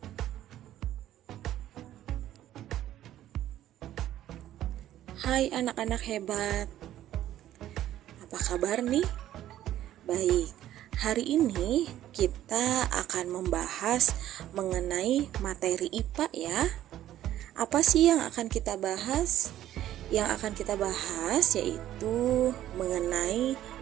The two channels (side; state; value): left; quieter; 12.7 dB